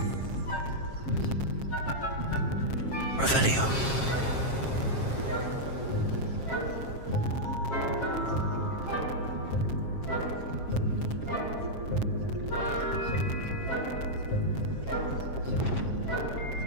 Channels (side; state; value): right; late; 7.5 ms